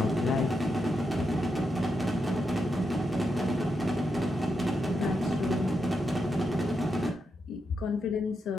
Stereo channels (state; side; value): normal; both; correlation 0.84